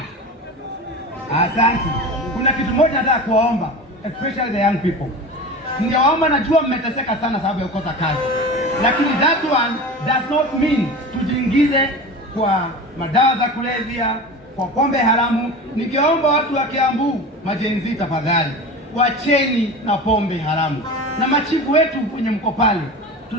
asante. Kuna kitu moja nataka kuwaomba, especially the young people. Ningewaomba, najua mmeteseka sana sababu ya kukosa kazi, lakini that one does not mean tujiingize kwa madawa za kulevya, kwa pombe haramu. Ningeomba watu wa Kiambu, majenzi, tafadhali wacheni na pombe haramu. Na machifu wetu kwenye mko pale,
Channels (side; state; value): both; normal; correlation 0.31